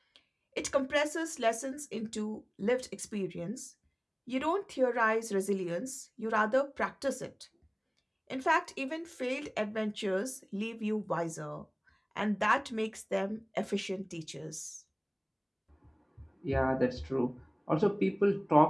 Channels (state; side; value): identical; both; correlation 1.00